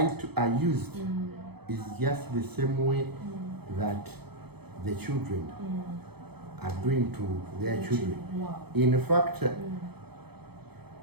used is just the same way that the children are doing to their children. Wow. In fact,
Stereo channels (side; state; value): left; late; 0.97 ms